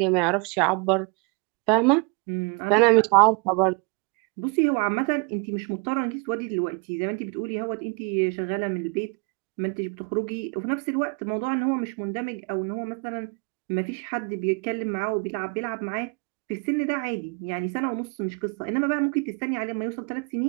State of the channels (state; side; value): quieter; left; 32.2 dB